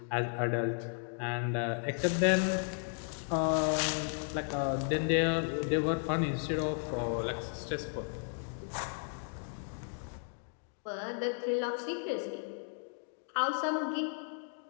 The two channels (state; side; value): silent; right; 55 dB below the other